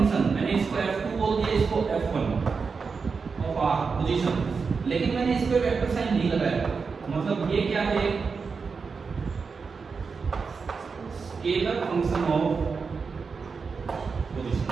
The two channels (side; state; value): left; quieter; 5.1 dB